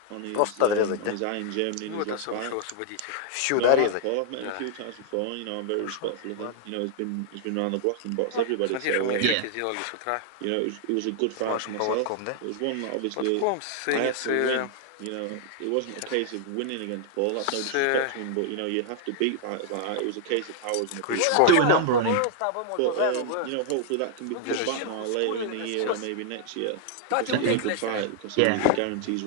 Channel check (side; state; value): both; different; correlation 0.00